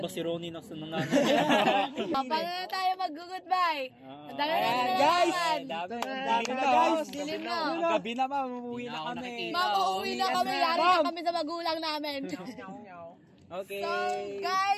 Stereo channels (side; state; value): both; identical; correlation 1.00